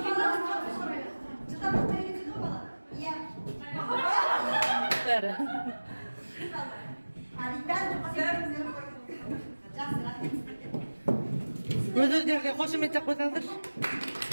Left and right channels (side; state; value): both; inverted; correlation -1.00